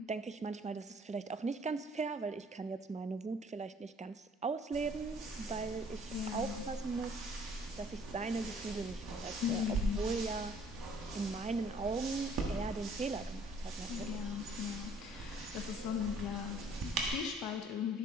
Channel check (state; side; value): normal; both; correlation 0.58